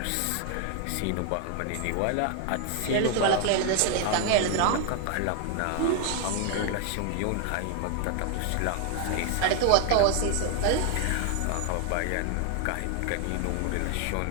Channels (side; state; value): both; different; correlation 0.01